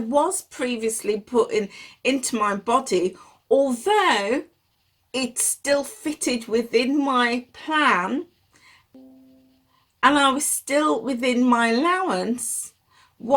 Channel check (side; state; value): both; identical; correlation 1.00